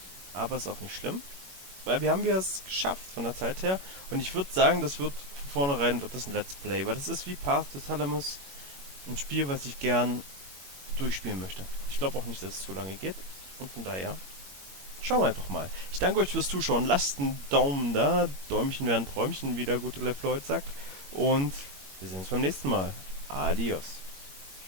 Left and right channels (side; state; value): left; late; 21 ms